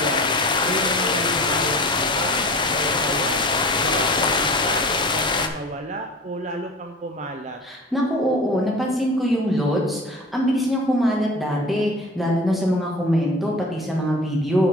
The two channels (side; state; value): both; normal; correlation 0.38